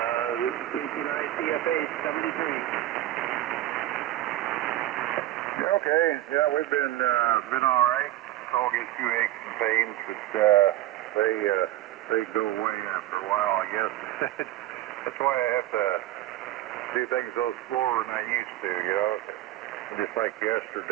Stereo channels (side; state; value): left; quieter; 14.5 dB